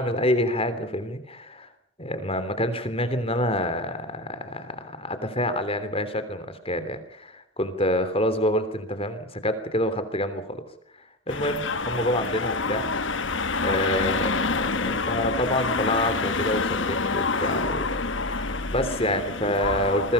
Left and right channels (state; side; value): normal; both; correlation 0.20